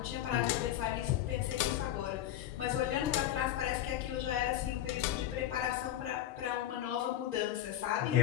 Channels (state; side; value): quieter; right; 12.3 dB